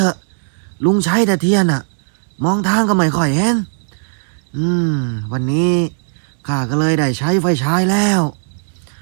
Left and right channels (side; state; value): left; silent; digital silence